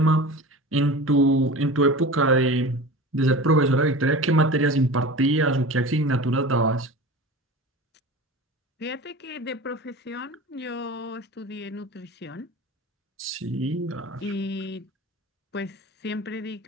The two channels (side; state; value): both; normal; correlation 0.34